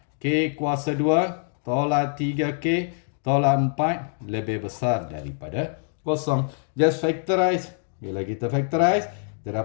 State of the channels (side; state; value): right; silent; digital silence